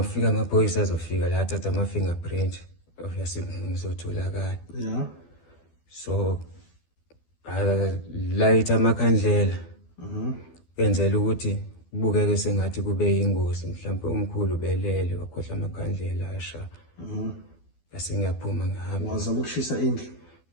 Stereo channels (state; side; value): late; right; 12 ms